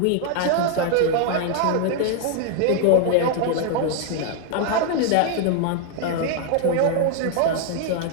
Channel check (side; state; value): both; different; correlation 0.00